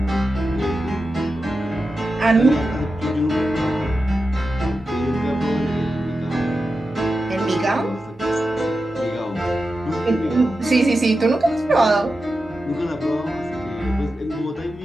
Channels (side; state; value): both; normal; correlation 0.91